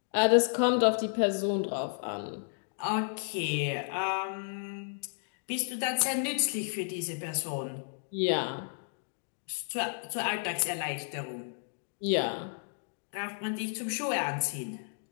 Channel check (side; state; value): right; silent; digital silence